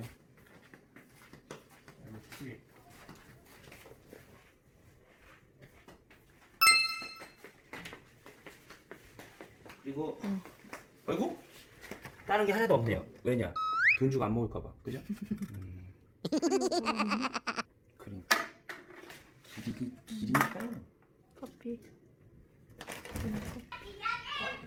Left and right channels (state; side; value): identical; both; correlation 1.00